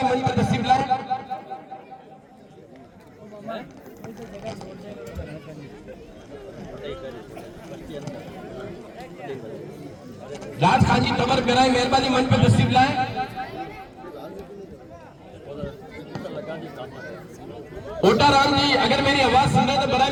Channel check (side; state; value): both; identical; correlation 1.00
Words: मंच पर तशरीफ लाएं। राज खान जी तंवर बराए मेहरबानी मंच पर तशरीफ लाएं। ओटा राम जी अगर मेरी आवाज सुन रहे हैं तो बराए